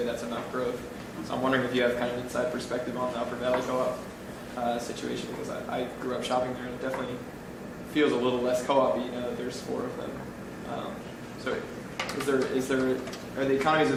that's enough growth. So I'm wondering if you have kind of an inside perspective on the Upper Valley Co-op. situation because I grew up shopping there and it definitely feels a little less co-op-y now that there's 4 of them. So are the economies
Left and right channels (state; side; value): identical; both; correlation 1.00